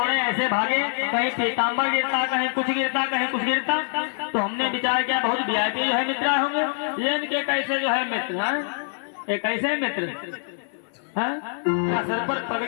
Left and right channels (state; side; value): silent; right; 62 dB below the other